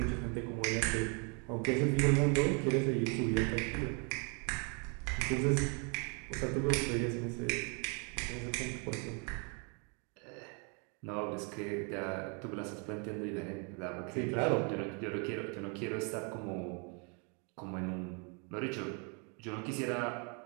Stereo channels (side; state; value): left; quieter; 36.0 dB